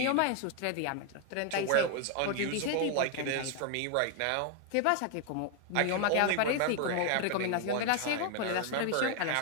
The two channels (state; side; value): different; both; correlation 0.00